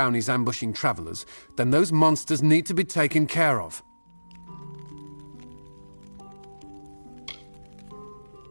ambushing travelers, then those monsters need to be taken care of.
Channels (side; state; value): both; inverted; correlation -1.00